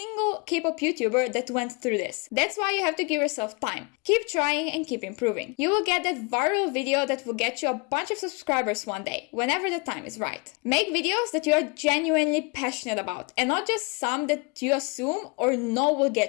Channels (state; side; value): quieter; right; 30.5 dB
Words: K-pop YouTuber that went through this. That's why you have to give yourself time. Keep trying and keep improving. You will get that viral video that will get you a bunch of subscribers one day, whenever the time is right. Make videos that you are genuinely passionate about, and not just some that you assume or know will